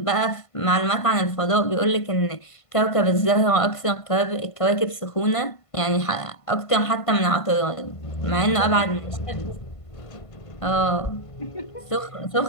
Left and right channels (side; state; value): right; late; 1.5 ms